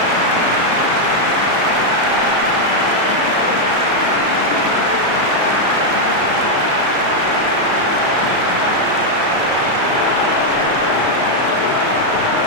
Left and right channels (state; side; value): late; left; 34 ms